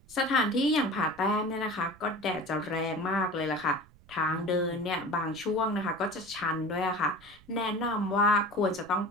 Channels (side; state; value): right; noise; rumble, 25 dB below the sound